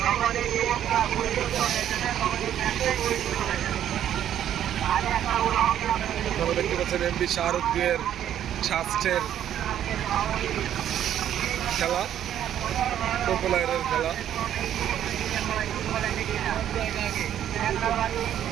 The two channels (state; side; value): quieter; left; 10.7 dB